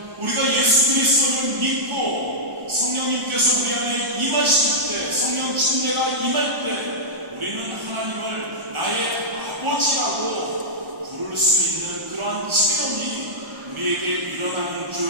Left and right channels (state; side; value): late; left; 1.0 ms